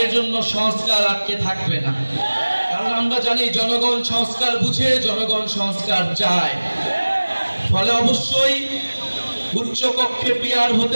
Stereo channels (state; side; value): inverted; both; correlation -1.00